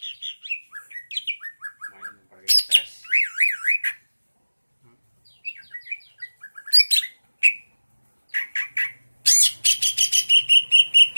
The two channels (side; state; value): both; inverted; correlation -1.00